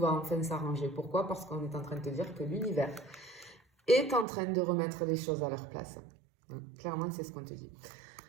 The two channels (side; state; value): left; drops out; at 4.2 s